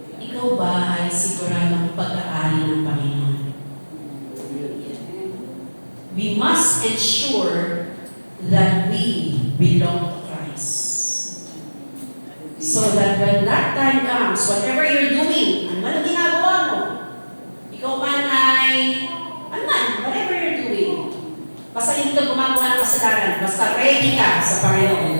ikaw ba ay siguradong pag-aari ng Panginoon? We must ensure that we belong to Christ. So that when that time comes, whatever you're doing, ano man ang ginagawa mo, ikaw man ay, ano man, whatever you're doing, basta hindi ka gumagawa ng kasalanan, basta ready ka sa Panginoon,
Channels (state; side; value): inverted; both; correlation -1.00